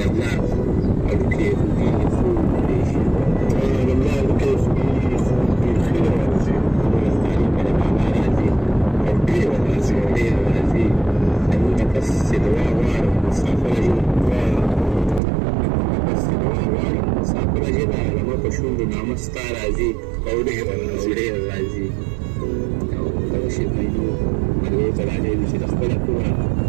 پلار هډوکي خوږېږي، خوب پرېښي. د پلار هډوکي خوږېږي، خوب پرېښي راځي. ورځتاني په د بابا راځي او ډېره راځي. او ډېره راځي. زموږ نه پس چې دعا غواړم مسافره ژبه پس چې دعا غواړم مسافره ژبه زما په شونډو نامه ستا راځي او ډېره راځي. او ډېره راځي. او دغه شي میندو مرغیو ته راغلي چې د خپله کوره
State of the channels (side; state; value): left; drops out; at 15.2 s